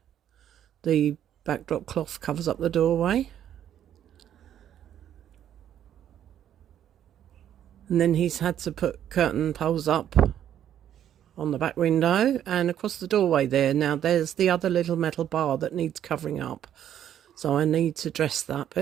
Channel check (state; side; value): quieter; left; 10.4 dB